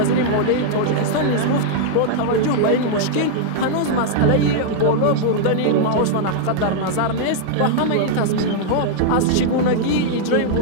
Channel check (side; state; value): both; different; correlation -0.01